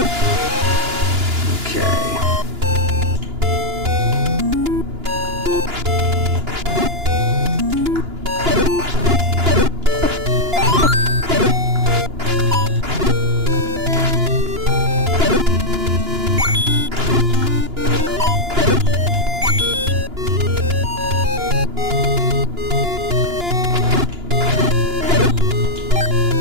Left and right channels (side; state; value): left; late; 2.9 ms